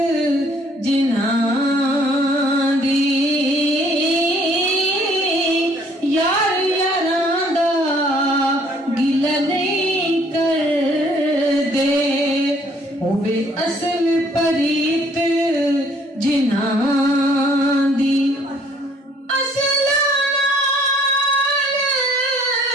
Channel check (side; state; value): both; normal; correlation 0.61